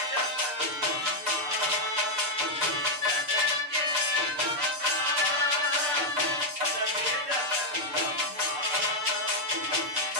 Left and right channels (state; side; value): late; left; 6.8 ms